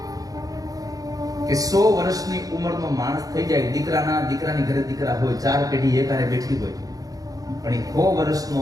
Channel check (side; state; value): left; late; 0.17 ms